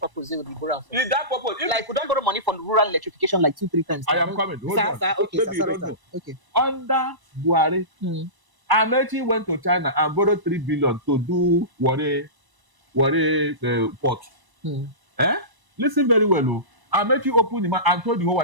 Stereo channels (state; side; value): late; left; 1.0 ms